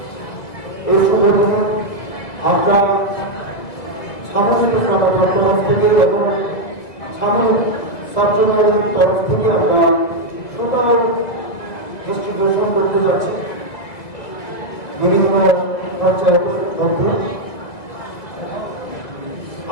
এই শুভ দিনে আমরা সামরিক সরকার তরফ থেকে এবং সামরিক সার্জনাল তরফ থেকে আমরা টোটাল ডিস্ট্রিবিউশন করতে যাচ্ছি বিভিন্ন পঞ্চায়েত মধ্যে।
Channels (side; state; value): right; late; 1.9 ms